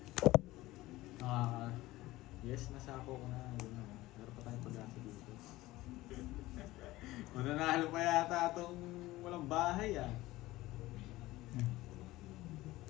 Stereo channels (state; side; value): quieter; right; 17.9 dB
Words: Yes, nasako ko na. Yun na. Meron pa tayong pag-asa dito. Mananalo pa yata itong walang bahay ah.